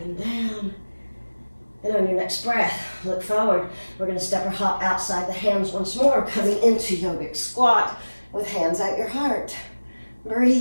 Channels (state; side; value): inverted; both; correlation -1.00